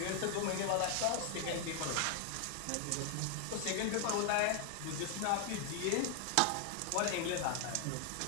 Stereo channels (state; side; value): different; both; correlation 0.00